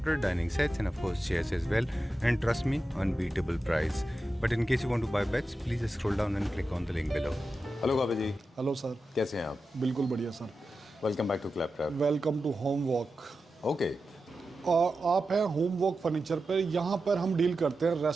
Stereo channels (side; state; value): both; normal; correlation 0.91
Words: dining sets, and of course chairs as well, and trust me, unbeatable price. But in case you want to buy beds, please scroll down and click on the link below. Hello काबे ji. Hello sir, कैसे हैं आप? बिल्कुल बढ़िया सर। Welcome back to Claptrap. Welcome to home walk. Okay, आप हैं home walk furniture पर। यहाँ पर हम डील करते हैं